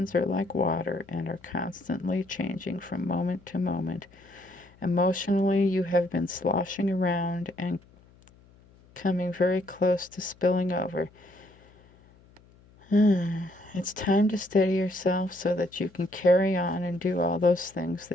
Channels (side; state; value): left; noise; hum, 27 dB below the sound